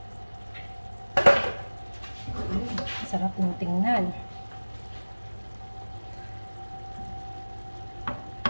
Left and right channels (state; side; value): inverted; both; correlation -1.00